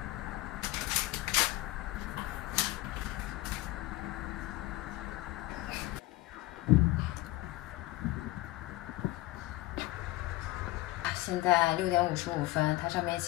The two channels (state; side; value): quieter; right; 18.1 dB